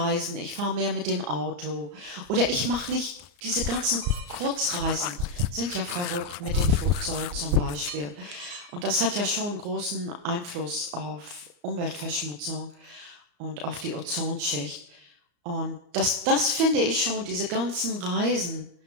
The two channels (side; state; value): left; late; 34 ms